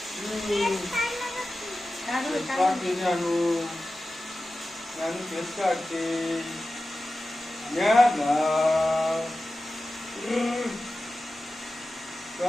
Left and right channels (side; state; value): both; normal; correlation 0.94